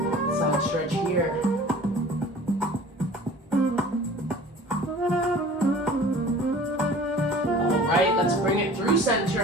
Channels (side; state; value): both; normal; correlation 0.45